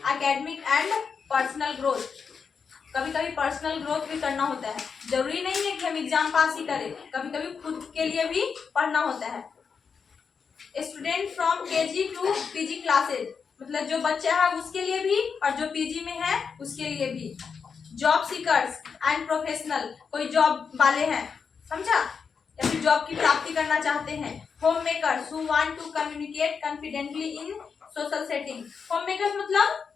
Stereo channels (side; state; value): right; quieter; 5.9 dB